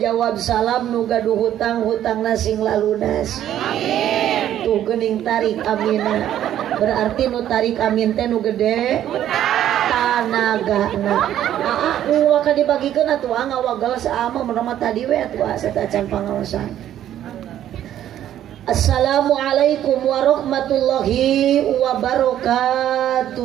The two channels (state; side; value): quieter; left; 11.4 dB